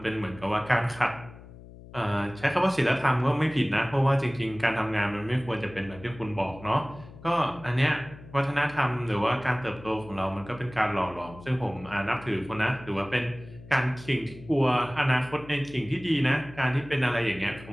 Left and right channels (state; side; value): noise; left; hum, 18 dB below the sound